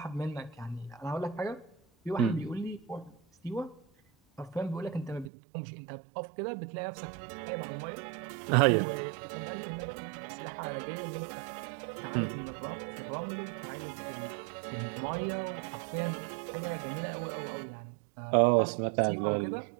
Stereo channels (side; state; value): left; drops out; at 5.3 s